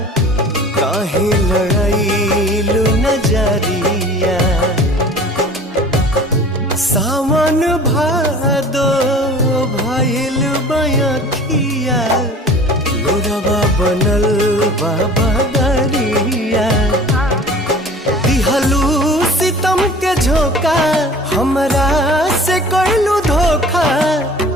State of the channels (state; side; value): normal; both; correlation 0.44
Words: काहे लड़ाईलू नजरिया। सावन भादो भइल बयखिया लोरवा बनल बाबा दरिया। दिहलू सितम के झोंका हमरा से कइलू धोखा।